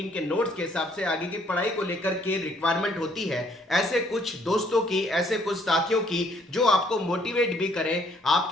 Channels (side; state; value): both; normal; correlation 0.65